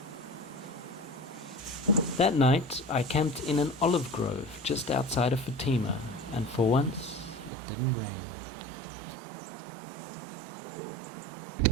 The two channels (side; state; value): left; drops out; at 7.5 s